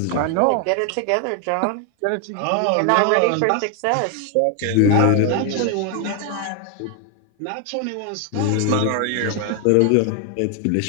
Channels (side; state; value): both; different; correlation 0.01